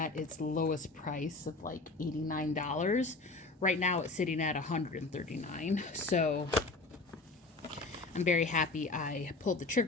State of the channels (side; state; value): right; quieter; 3.4 dB